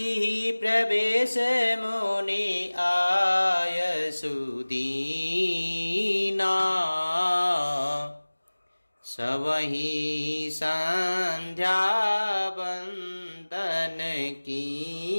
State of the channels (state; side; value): inverted; both; correlation -1.00